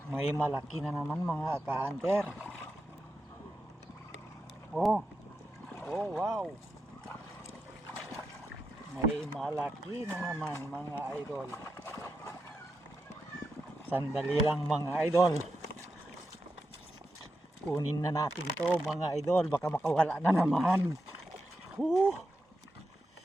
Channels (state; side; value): normal; both; correlation 0.87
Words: May malaki na naman mga ka-hunter. Oh. Oh, wow. May malaki na naman mga idol. Sandali lang mga idol. Kunin na natin to mga idol, baka makawala na naman. Oh,